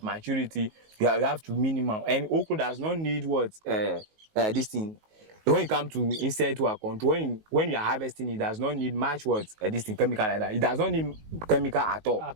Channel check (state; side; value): late; left; 19 ms